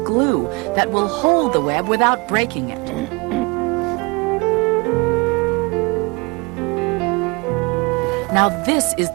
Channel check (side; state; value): left; quieter; 28.1 dB